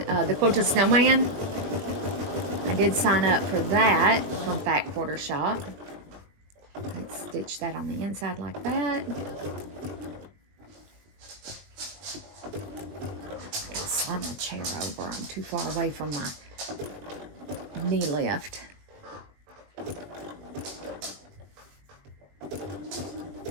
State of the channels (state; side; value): late; left; 20 ms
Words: the Quilted Snowman. I did sign up for that from Fat Quarter Shop. Let's stitch that on the inside like that. I can slide my chair over. I'm too far away from my knee lift.